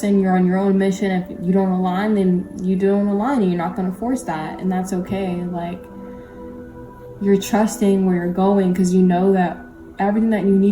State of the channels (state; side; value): identical; both; correlation 1.00